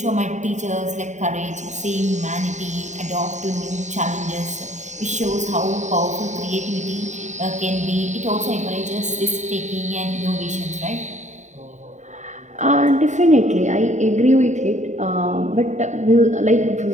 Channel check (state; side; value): late; left; 0.34 ms